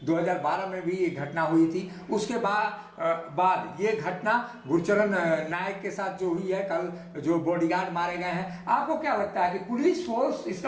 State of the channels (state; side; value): identical; both; correlation 1.00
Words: 2012 में भी ये घटना हुई थी। उसके बाद ये घटना गुरुचरण नायक के साथ जो हुई है, कल जो बॉडीगार्ड मारे गए हैं। आपको क्या लगता है कि पुलिस फोर्स